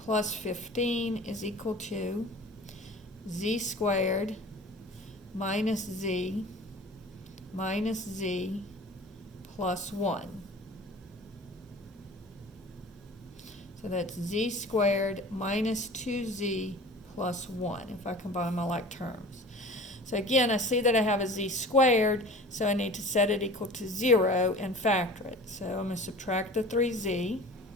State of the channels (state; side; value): normal; both; correlation 0.41